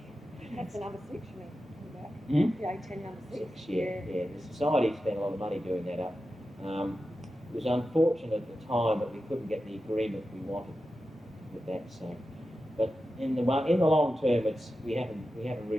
That's the number 6, you mean? Hmm? The A10 number 6. Yeah. The society spent a lot of money doing that up. It was unfortunate at the time that we couldn't get the agreement we wanted with that. So, but in the long term, we haven't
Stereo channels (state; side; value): normal; both; correlation 0.92